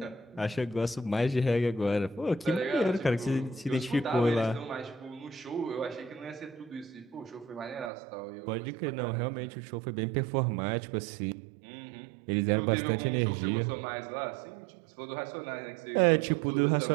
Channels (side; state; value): left; drops out; at 7.9 s